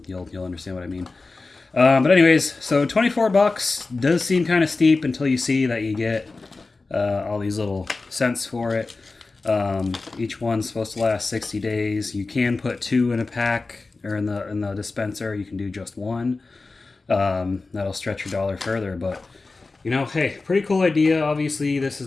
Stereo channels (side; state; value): right; quieter; 3.7 dB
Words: you'll understand what I mean. But anyways, so $24 does seem kind of steep until you see that you get all these little scents for it. Each one's supposed to last 60 days. You can put 2 in a pack or in the dispenser. You can do just 1. That'll stretch your dollar further, but you know, hey, pretty cool idea. Obviously, this is